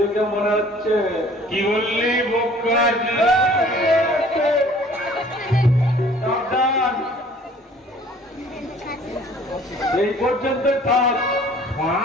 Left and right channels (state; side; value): normal; both; correlation 0.52